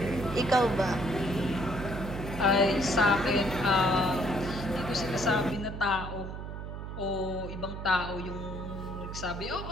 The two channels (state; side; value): noise; right; hum, 8 dB below the sound